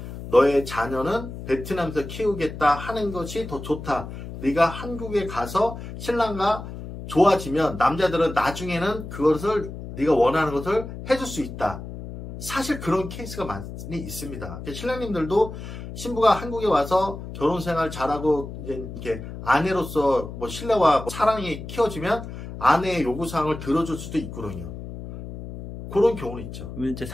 너의 자녀는 베트남에서 키우겠다 하는 것이 더 좋다. 네가 한국에 가서 신랑과 좋아지면 남자들은 나중에는 그것을 네가 원하는 것을 해줄 수 있다. 사실 그런 케이스가 많이 있습니다. 신랑님들도 신부가 한국에 와서 결혼 생활 잘하고 이제 이렇게 아내로서 뭐 신뢰와 뭐 사랑이 키워지면 아내의 요구사항을 들어줄 수도 있거든요. 그런 경우는 있죠. 이제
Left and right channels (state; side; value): noise; left; hum, 10 dB below the sound